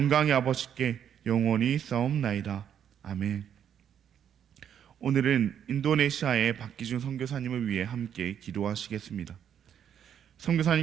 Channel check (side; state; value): left; quieter; 9.0 dB